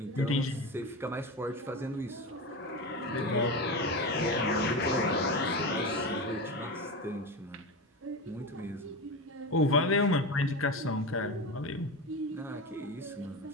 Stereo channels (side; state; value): both; normal; correlation 0.22